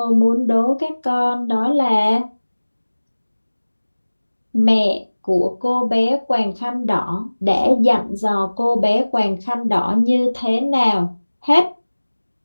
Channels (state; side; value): inverted; both; correlation -1.00